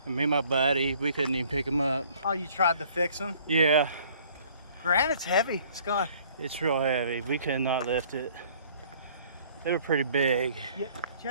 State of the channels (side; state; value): both; inverted; correlation -0.56